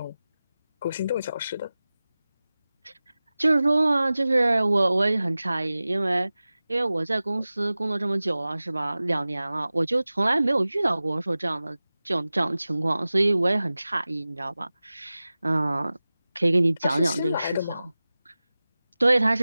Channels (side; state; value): both; inverted; correlation -0.97